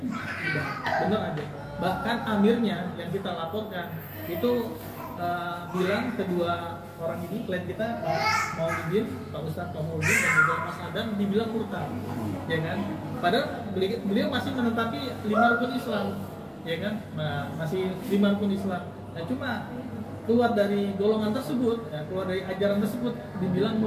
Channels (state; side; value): identical; both; correlation 1.00